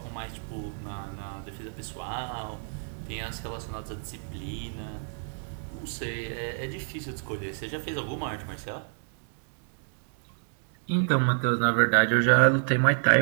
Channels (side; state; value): left; silent; 59 dB below the other